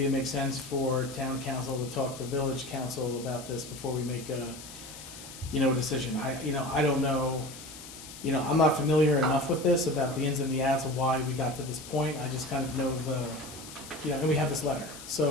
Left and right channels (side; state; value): left; noise; hiss, 14 dB below the sound